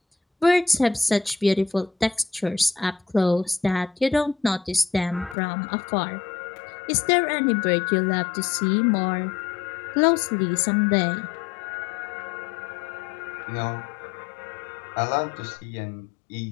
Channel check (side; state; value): right; drops out; at 5.4 s